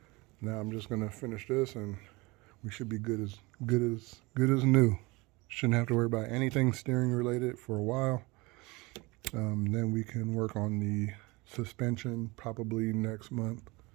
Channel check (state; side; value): quieter; left; 24.3 dB